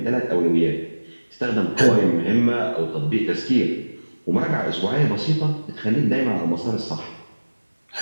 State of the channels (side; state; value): both; inverted; correlation -1.00